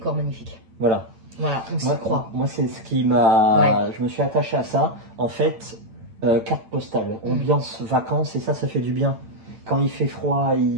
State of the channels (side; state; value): left; late; 8.9 ms